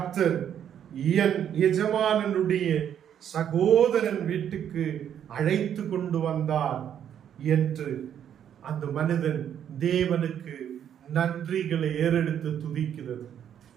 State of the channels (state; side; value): quieter; left; 9.4 dB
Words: என் எஜமானனுடைய சகோதரன் வீட்டுக்கு அழைத்து கொண்டு வந்தார் என்று அந்த மனிதன் தேவனுக்கு நன்றிகளை ஏறெடுத்து துதிக்கிறது.